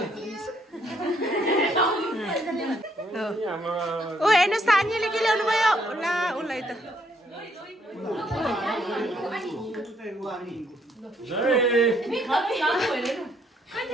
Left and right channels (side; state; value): both; normal; correlation 0.69